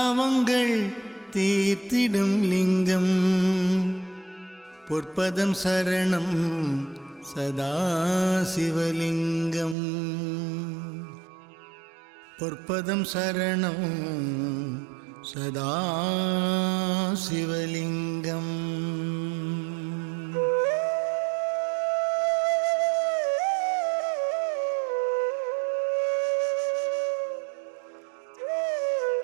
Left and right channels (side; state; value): left; drops out; at 9.8 s